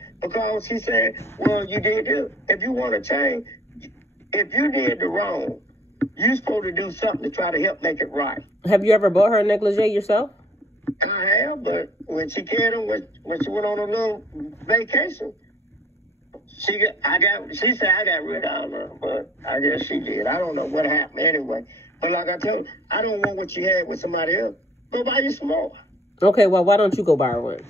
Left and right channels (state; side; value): normal; both; correlation 0.54